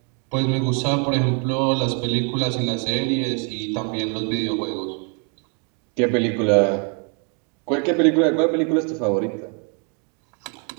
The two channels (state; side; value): quieter; left; 38.3 dB